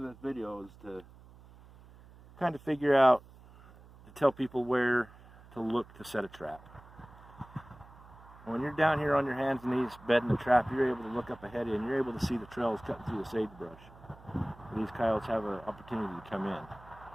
this video is to kind of figure out, to tell people where to look to set a trap. When you're down here on your hands and knees bedding the trap, you're able to look up ahead of you and you're able to see the trails cutting through the sagebrush. These coyotes have an opportunity to come in.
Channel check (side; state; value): right; noise; hum, 22 dB below the sound